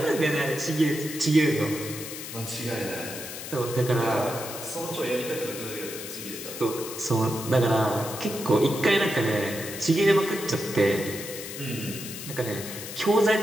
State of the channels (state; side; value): noise; left; hiss, 9 dB below the sound